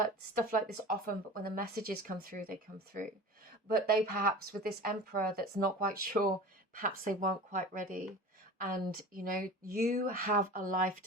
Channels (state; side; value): normal; both; correlation 0.37